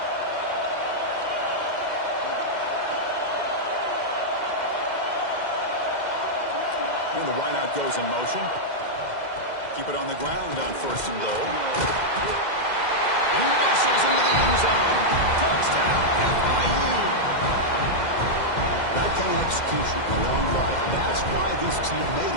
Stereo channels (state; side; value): late; right; 2.1 ms